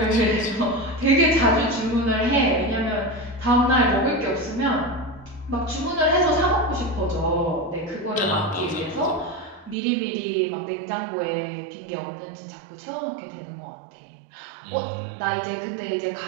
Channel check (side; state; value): left; drops out; at 9.8 s